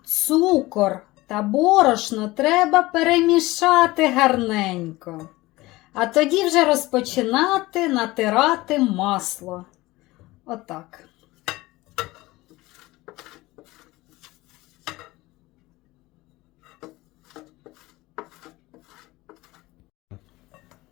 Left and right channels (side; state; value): right; quieter; 19.8 dB